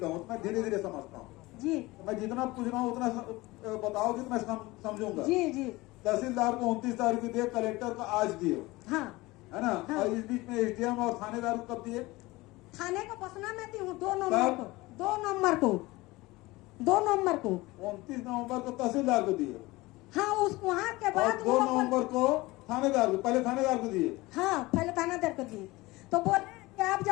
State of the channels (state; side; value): quieter; right; 20.8 dB